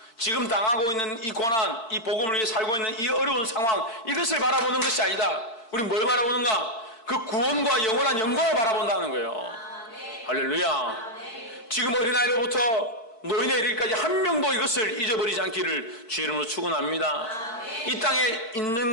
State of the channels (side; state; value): right; late; 4.5 ms